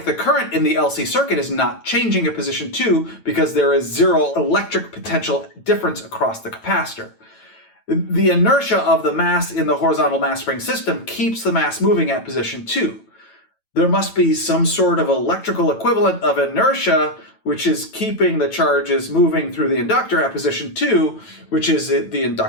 the current in the LC circuit is not changing at position 2 because there is zero electric potential difference across the capacitor. The inertia of the mass in the horizontal mass spring system keeps the mass moving at position 2. There must be some sort of electrical equivalent of inertia which is keeping the charges moving through the inductor at position 2, which is the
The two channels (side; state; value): right; late; 9.0 ms